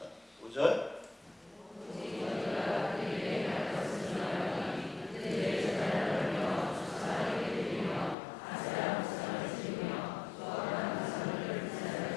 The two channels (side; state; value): right; drops out; at 8.2 s